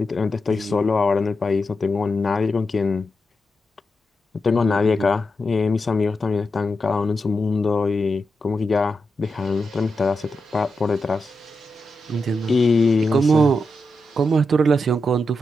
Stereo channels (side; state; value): both; normal; correlation 0.88